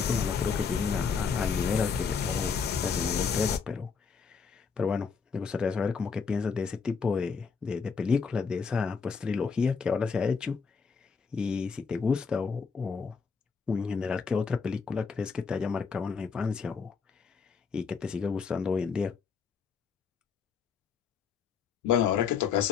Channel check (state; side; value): quieter; right; 5.7 dB